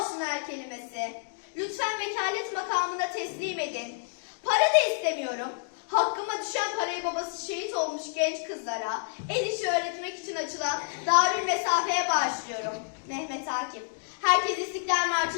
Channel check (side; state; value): right; silent; digital silence